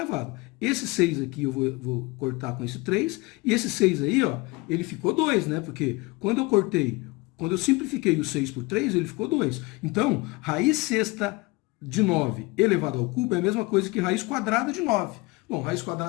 Esse 6 aqui eu vou cortar com esse 3, e esse 6 aí, ó, ele ficou 2, né? Porque quando eu simplifiquei o 6 por 3, ele ficou 2. Então, raiz sexta de 9 elevado ao cubo é a mesma coisa que raiz quadrada de 9. Bom, raiz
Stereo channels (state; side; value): quieter; right; 23.9 dB